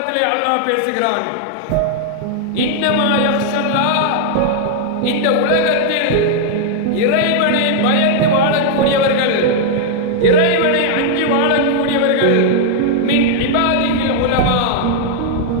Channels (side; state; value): both; different; correlation 0.00